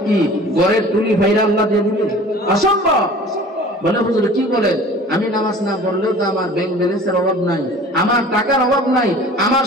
কি ঘরের টুলি ভাইরা আল্লাহ দিয়ে দিবেন? অসম্ভব। বলে হুজুর কি বলেন, আমি নামাজ না পড়লেও তো আমার ব্যাংক ব্যালেন্সের অভাব নাই, আমার টাকার অভাব নাই, আমার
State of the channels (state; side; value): normal; both; correlation 0.44